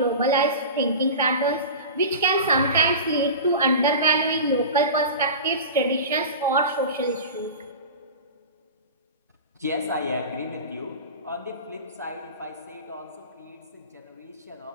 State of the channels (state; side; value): inverted; both; correlation -0.31